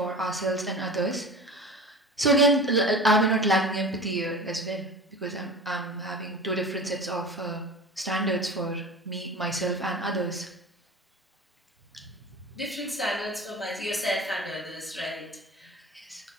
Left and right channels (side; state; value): both; normal; correlation 0.35